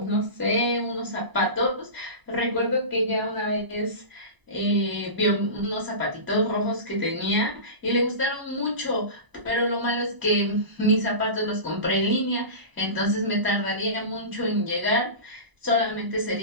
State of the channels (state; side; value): late; left; 1.0 ms